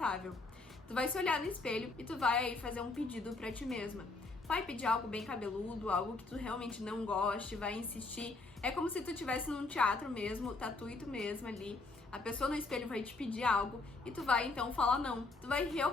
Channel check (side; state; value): right; quieter; 3.5 dB